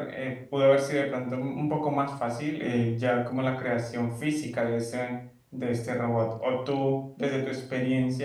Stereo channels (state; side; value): identical; both; correlation 1.00